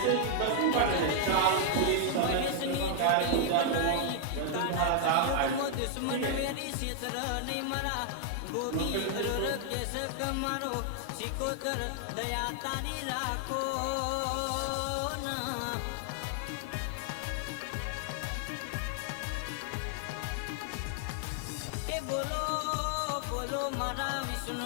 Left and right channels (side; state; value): both; different; correlation 0.00